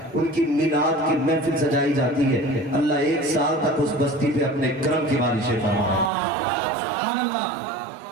उनकी मिलाद की महफिल सजाई जाती है, अल्लाह 1 साल तक उस बस्ती पे अपने करम की बारिशें फरमाए।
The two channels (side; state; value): left; drops out; at 6.1 s